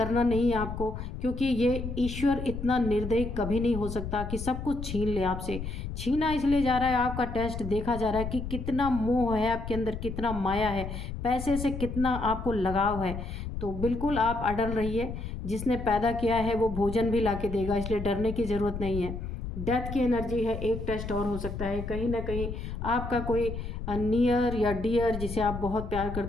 नहीं है आपको, क्योंकि ये ईश्वर इतना निर्दयी कभी नहीं हो सकता कि सब कुछ छीन ले आपसे। छीना इसलिए जा रहा है, आपका टेस्ट देखा जा रहा है कि कितना मोह है आपके अंदर, कितना माया है, पैसे से कितना आपको लगाव है। तो बिल्कुल आप अड़ल रहिए। जिसने पैदा किया है वो भोजन भी ला के देगा, इसलिए डरने की ज़रूरत नहीं है। डेथ की एनर्जी है, एक टेस्ट और हो सकता है। कहीं ना कहीं आपका कोई नियर या डियर, जिसे आप बहुत प्यार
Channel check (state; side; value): noise; left; rumble, 7 dB below the sound